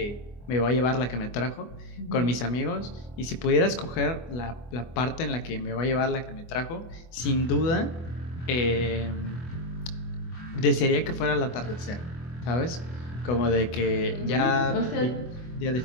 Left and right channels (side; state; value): right; late; 24 ms